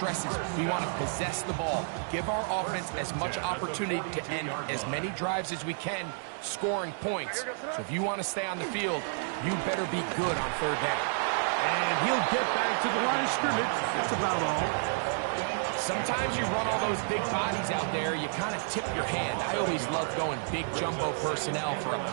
we want to possess the ball, give our offense as much opportunity to end as many drives as we can, scoring points. So if you want to stay on the field, you better be good on 3rd down. And he'll get back to the line of scrimmage. That's about all. Sometimes you run all those big bodies out there, you kind of tip your hand. I always love going big jumbo personnel for a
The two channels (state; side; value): silent; left; digital silence